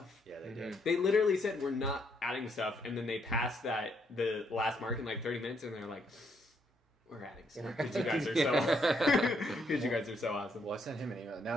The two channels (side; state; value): both; normal; correlation 0.73